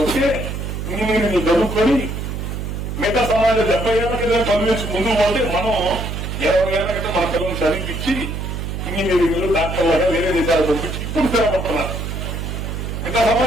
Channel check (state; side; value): noise; right; hum, 5 dB below the sound